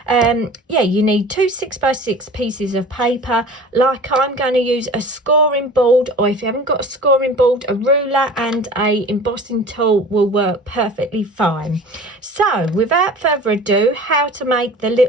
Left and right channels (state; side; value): normal; both; correlation 0.41